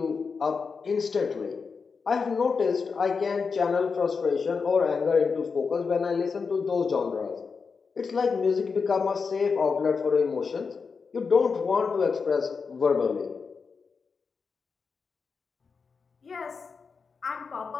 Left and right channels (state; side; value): quieter; right; 5.2 dB